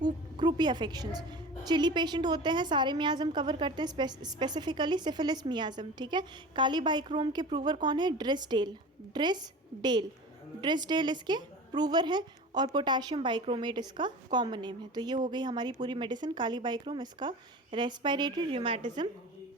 croupy affections. Chilly patient होते हैं, सारे मियाज़म कवर करते हैं, स्पेसिफिकली सिफिलिस मियाज़म। ठीक है, काली बाइक्रोम के प्रूवर कौन है, ड्रिसडेल इसके प्रूवर है, और पोटाशियम बाइक्रोमेट इसका कॉमन नेम है। तो ये हो गई हमारी पूरी मेडिसिन काली बाइक्रोम, इसका रेस्पिरेटरी, रूमेटिज्म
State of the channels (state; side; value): normal; both; correlation 0.35